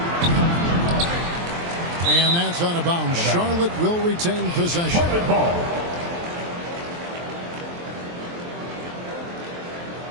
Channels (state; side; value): late; left; 23 ms